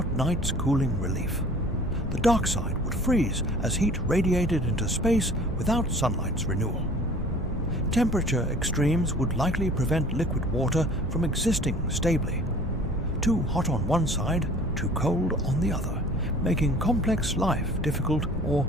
night's cooling relief. The dark side would freeze as heat radiated into space without sunlight's renewal. Temperature extremes would likely prevent liquid water from existing stably. Too hot on one side, too cold on the other, making complex life difficult or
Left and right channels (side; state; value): both; normal; correlation 0.48